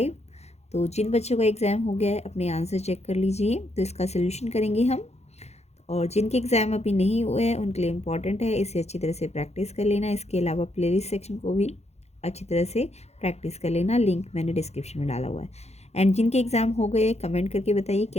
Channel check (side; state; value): right; late; 0.31 ms